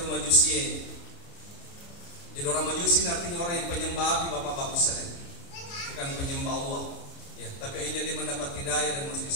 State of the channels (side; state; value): right; late; 29 ms